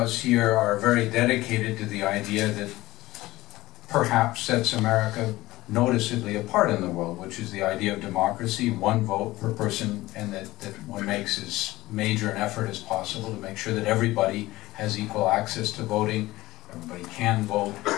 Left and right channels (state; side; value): quieter; right; 18.1 dB